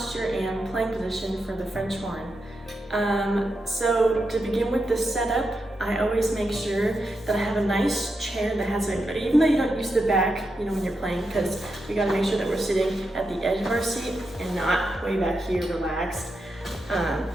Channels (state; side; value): normal; both; correlation 0.86